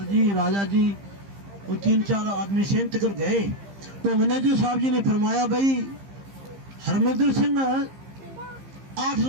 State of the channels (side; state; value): left; late; 15 ms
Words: जी, राजा जी और 3-4 आदमी सेंट कर गए। तो मैनेजर साहब जी ने फरमाया भाई हरमिंदर सिंह 8